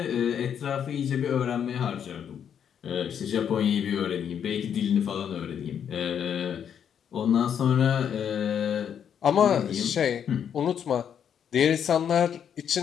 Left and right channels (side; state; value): right; quieter; 8.4 dB